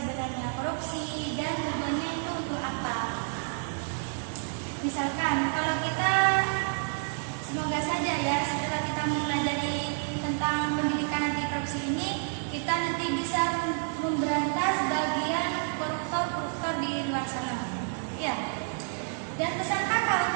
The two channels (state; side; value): silent; left; 58 dB below the other